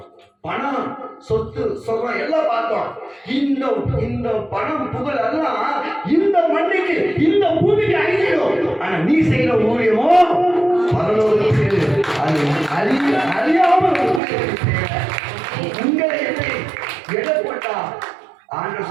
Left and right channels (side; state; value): left; drops out; at 14.2 s